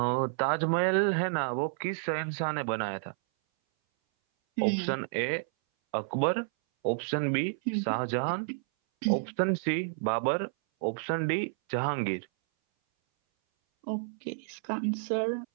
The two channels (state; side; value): silent; left; 58 dB below the other